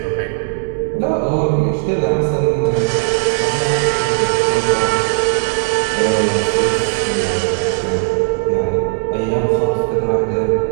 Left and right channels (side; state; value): left; silent; 65 dB below the other